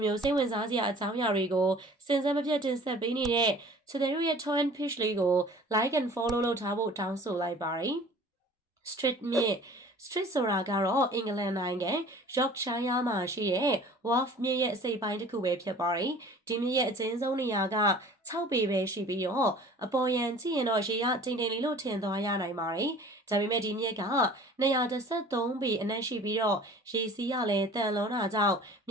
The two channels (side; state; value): both; normal; correlation 0.46